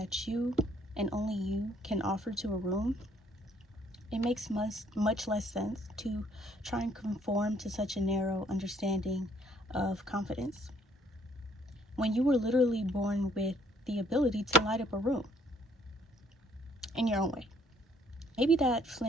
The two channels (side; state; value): both; normal; correlation 0.64